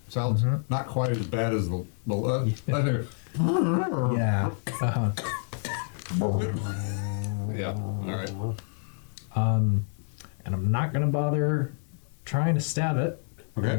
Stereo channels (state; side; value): silent; right; 59 dB below the other